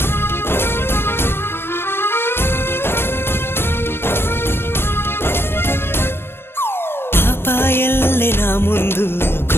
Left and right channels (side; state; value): right; late; 0.11 ms